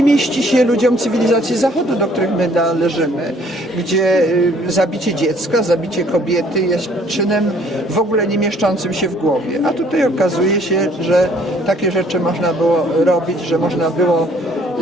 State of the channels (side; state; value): both; normal; correlation 0.60